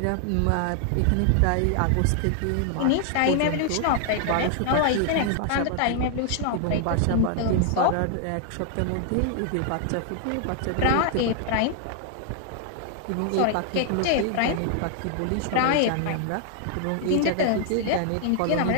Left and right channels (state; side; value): different; both; correlation 0.00